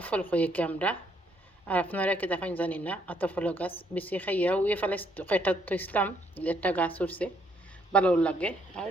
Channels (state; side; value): normal; both; correlation 0.70